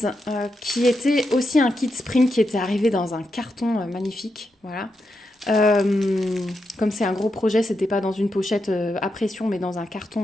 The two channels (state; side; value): normal; both; correlation 0.85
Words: qui était aussi un kit Spring qui était arrivé dans un carton magnifique. Voilà. Comme c'est un gros projet, c'était pas dans une pochette à pression, mais dans un